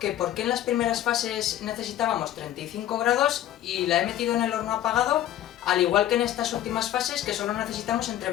por qué en las primeras fases necesitábamos 35 grados y la he metido en el horno apagado, al igual que en estas últimas fases que solo necesitamos entre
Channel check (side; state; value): right; quieter; 12.3 dB